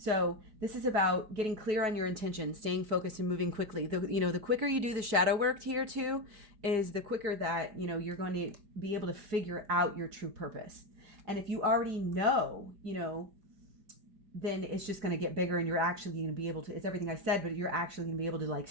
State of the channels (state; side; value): late; left; 4.9 ms